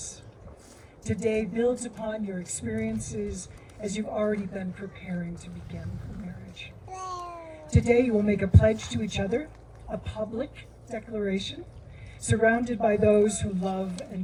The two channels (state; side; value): identical; both; correlation 1.00